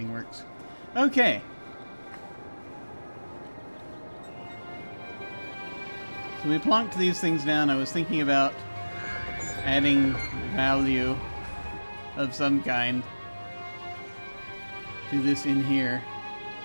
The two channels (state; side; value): inverted; both; correlation -1.00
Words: works. Okay. So we plonked these things down. I was thinking about adding value of some kind to this in here.